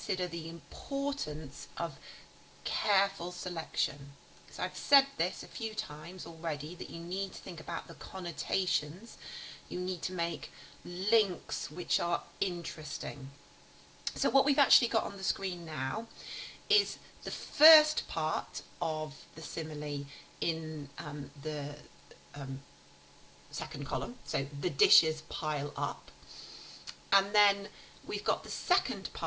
the importance of careful selection. So I've said this a few times already, that you need to think about the connotations. You need to make links which are interesting. So what we've actually got on the screen now is the first part of the simile in the second column. So the dishes pile up. And then we've got the second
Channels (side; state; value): both; identical; correlation 1.00